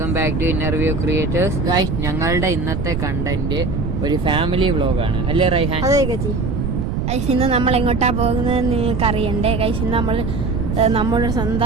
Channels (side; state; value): right; noise; rumble, 2 dB below the sound